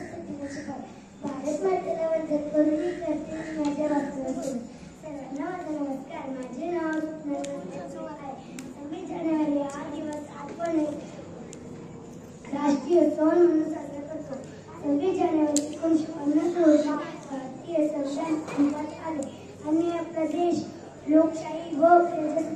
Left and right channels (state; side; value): identical; both; correlation 1.00